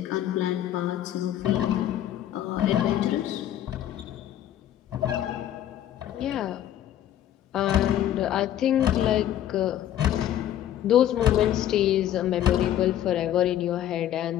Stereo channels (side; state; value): right; quieter; 11.7 dB